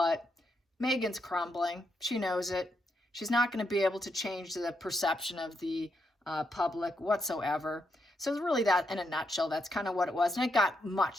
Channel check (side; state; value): both; normal; correlation 0.81